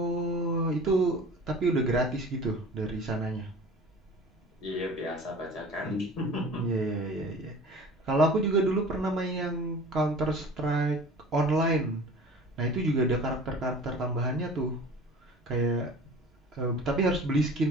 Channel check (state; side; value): normal; both; correlation 0.42